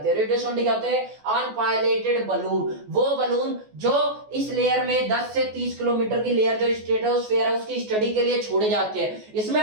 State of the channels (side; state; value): left; late; 14 ms